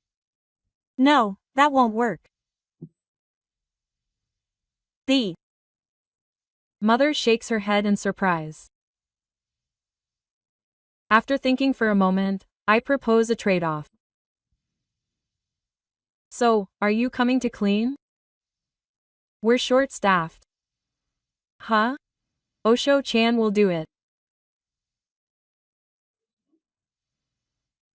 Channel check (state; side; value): identical; both; correlation 1.00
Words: No, that won't work. The mother shakes her head in surprise. After thinking for a moment, I propose a trade-off. So, are you coming to clean? We're short-staffed. Huh? Osho-chan will do it.